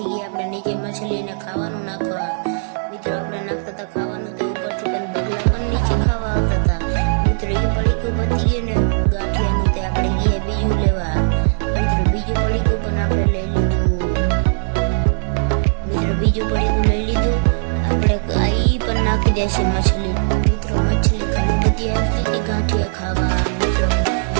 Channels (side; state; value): left; silent; 67 dB below the other